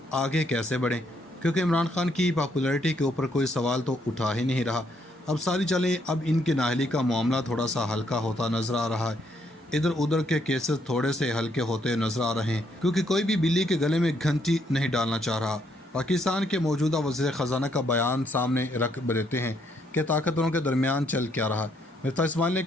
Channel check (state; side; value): normal; both; correlation 0.72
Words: आगे कैसे बढ़ें, क्योंकि इमरान खान की पॉपुलैरिटी के ऊपर कोई सवाल तो उठा ही नहीं रहा। अब सारी चलें, अब इनके नाअहली का मामला थोड़ा सा हल्का होता नज़र आ रहा है। इधर उधर के केसेस थोड़े से हल्के होते नज़र आ रहे हैं, क्योंकि कोई भी बिल्ली के गले में घंटी नहीं डालना चाह रहा। पाकिस्तान के मौजूदा वज़ीर ख़जाना का बयान सामने रख देते हैं कि ताकतवरों के दरमियान चल क्या रहा। मिर्ज़ा इस्माइल ने